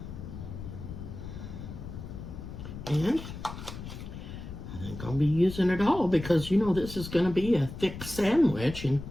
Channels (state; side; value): noise; left; rumble, 10 dB below the sound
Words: And I think I'll be using it all because, you know, this is going to be a thick sandwich, and